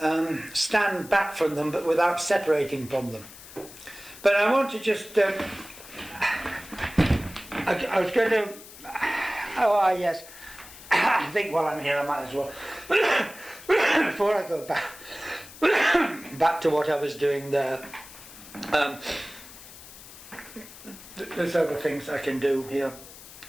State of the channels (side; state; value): left; noise; hiss, 17 dB below the sound